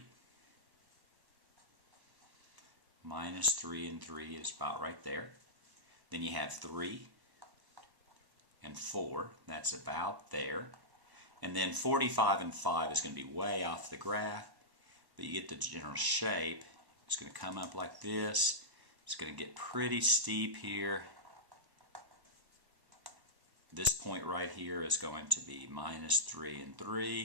Minus 3 and 3 is about right there. Then you have 3 and 4. That's about there. And then 45 and 5 is going to be way off the graph. But you get the general shape. It's going to come up like this. It's going to get pretty steep here. This point right here is going to be minus 3 and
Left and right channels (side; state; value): left; late; 1.1 ms